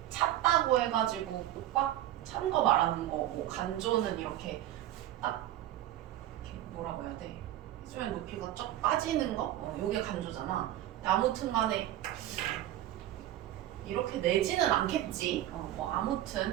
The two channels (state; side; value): quieter; left; 13.3 dB